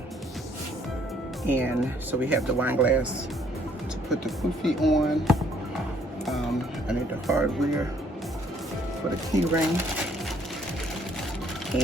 And so we have the wine glass to put the kufi on. I need the hardware for the key ring.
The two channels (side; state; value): both; normal; correlation 0.64